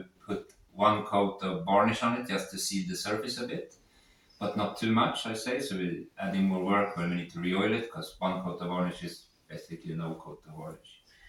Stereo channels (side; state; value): both; identical; correlation 1.00